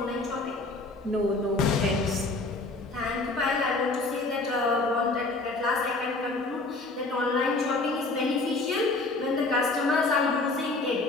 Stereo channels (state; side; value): quieter; right; 3.3 dB